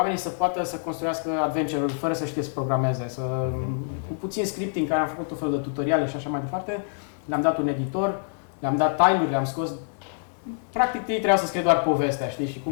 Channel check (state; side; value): silent; right; digital silence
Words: să poată să construiască adventure-uri fără să știe să programeze, cu puțin scripting, care am făcut tot felul de tutoriale și așa mai departe. Le-am dat un editor, le-am dat time-uri, le-am scos. Practic ei trebuiau să scrie doar povestea, știi, și